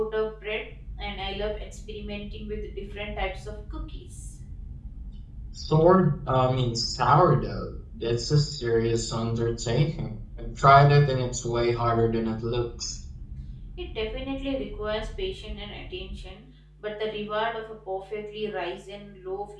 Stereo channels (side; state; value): both; identical; correlation 1.00